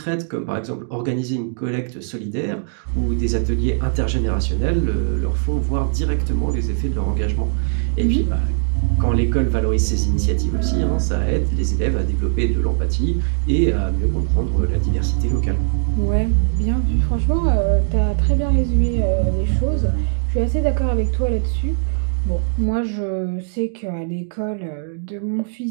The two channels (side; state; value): left; silent; digital silence